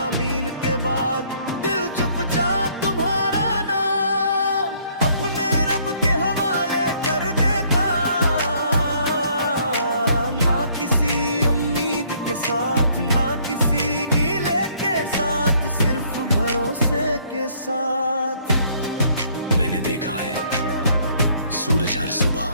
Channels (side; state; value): both; inverted; correlation -0.64